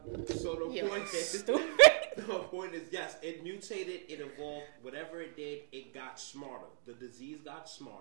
So the Yo, point is, stupid. the point is, yes, it mutated, it evolved. Whatever it did, it got smarter. The disease got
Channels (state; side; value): silent; left; digital silence